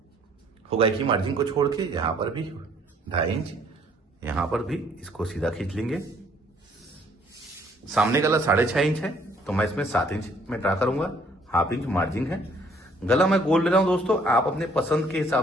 हुक की मार्जिन को छोड़ के यहां पर भी 2.5 इंच, यहां पर भी इसको सीधा खींच लेंगे। सामने गला 6.5 इंच है तो मैं इसमें 7 इंच में ड्रा करूंगा, 1/2 इंच मार्जिन है। गला मैं गोल ले रहा हूं दोस्तों, आप अपने पसंद के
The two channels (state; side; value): normal; both; correlation 0.62